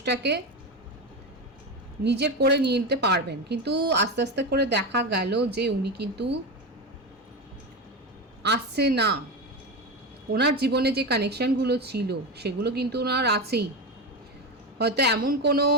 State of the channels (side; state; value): both; normal; correlation 0.18